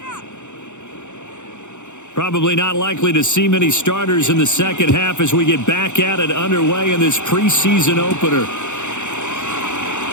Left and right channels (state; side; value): late; right; 0.84 ms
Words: Probably not likely to see many starters in the second half as we get back at it underway in this preseason opener.